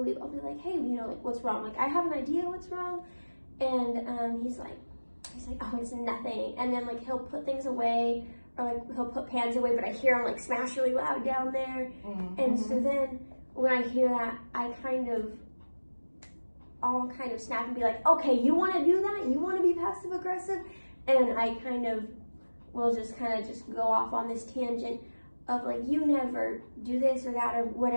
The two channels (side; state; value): both; inverted; correlation -1.00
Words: leave, I'll be like, hey, what's wrong? I have an idea what's wrong, and he's like, oh, it's nothing. And then he'll put things away, or he'll put pans away, but I hear him smash really loud down there. Mm-hmm. And so then when I hear that, I'll kind of snap and be like, okay, you want to do that? You want to be passive aggressive? And I will just go off on this tangent of you never do this or that or